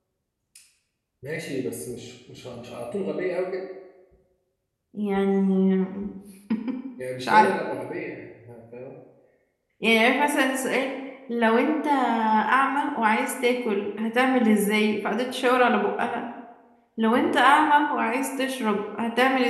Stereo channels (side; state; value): both; identical; correlation 1.00